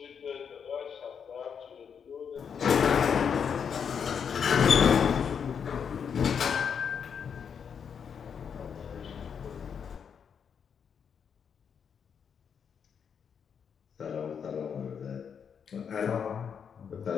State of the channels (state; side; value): quieter; right; 7.1 dB